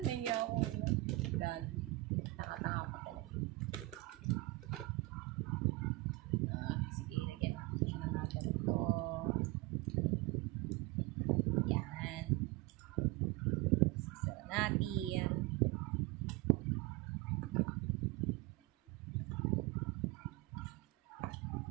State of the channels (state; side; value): quieter; left; 20.7 dB